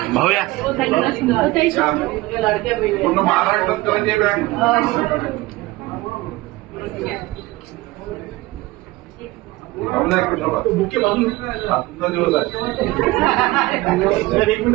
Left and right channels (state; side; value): quieter; left; 20.0 dB